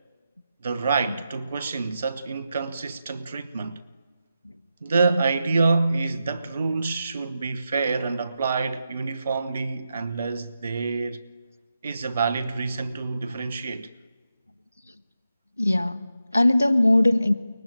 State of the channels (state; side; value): inverted; both; correlation -0.88